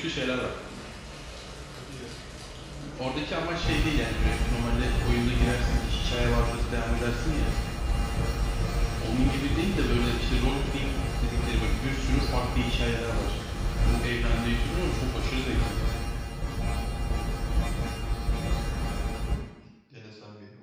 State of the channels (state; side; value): identical; both; correlation 1.00